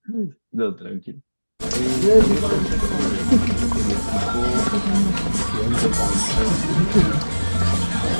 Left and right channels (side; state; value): both; inverted; correlation -1.00